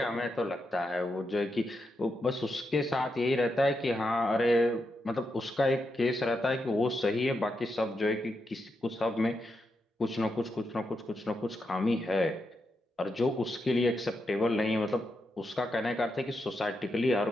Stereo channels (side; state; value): both; normal; correlation 0.85